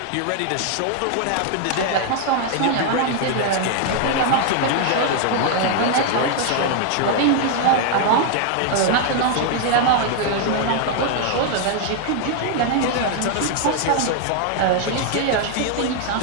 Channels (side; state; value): both; different; correlation 0.00